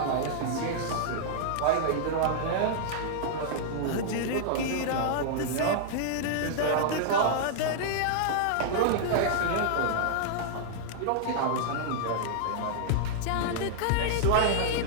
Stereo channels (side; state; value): both; different; correlation -0.01